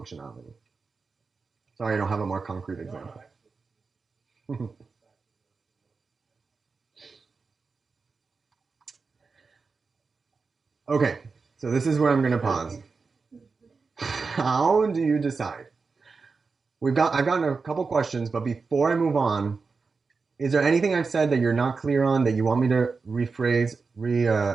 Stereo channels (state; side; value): quieter; left; 4.6 dB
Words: Sorry, I don't have a more concrete example. Okay, so this is where I'm going to pause. How do you decide? I've gotten a couple questions, but before I move on, is there anything I've said that you're not clear on that you want me to rephrase,